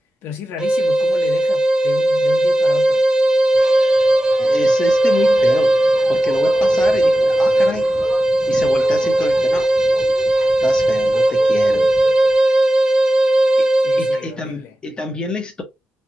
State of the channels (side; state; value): both; normal; correlation 0.94